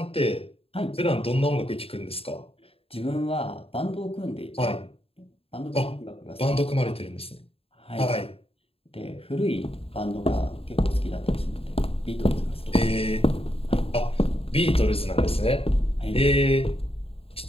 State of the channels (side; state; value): right; late; 0.28 ms